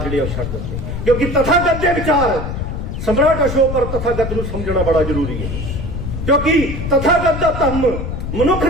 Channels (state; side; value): noise; left; rumble, 5 dB below the sound